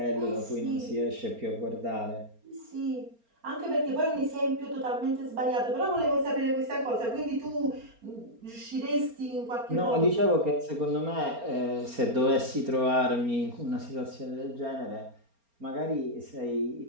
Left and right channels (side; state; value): left; late; 4.3 ms